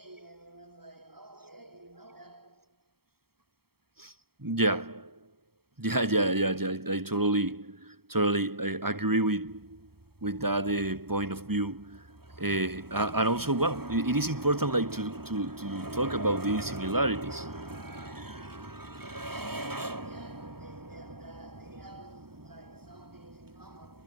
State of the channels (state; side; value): late; left; 0.95 ms